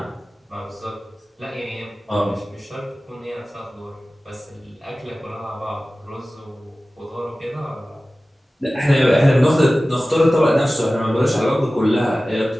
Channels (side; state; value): both; normal; correlation 0.96